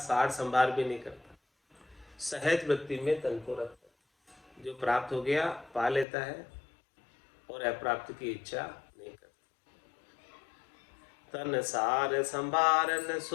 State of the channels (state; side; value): drops out; right; at 6.1 s